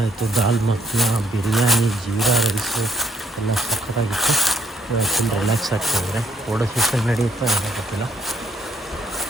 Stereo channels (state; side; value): normal; both; correlation 0.66